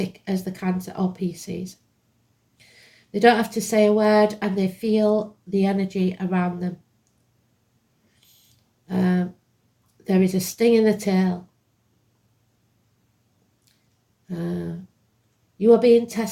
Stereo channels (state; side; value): identical; both; correlation 1.00